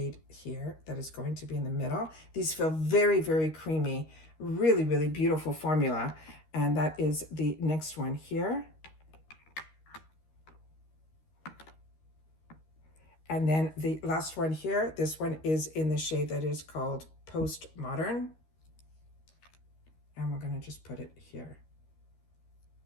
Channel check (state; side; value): late; right; 13 ms